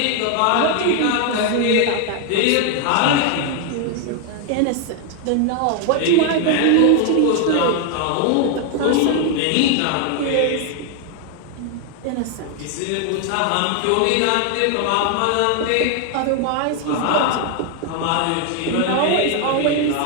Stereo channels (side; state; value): both; different; correlation 0.00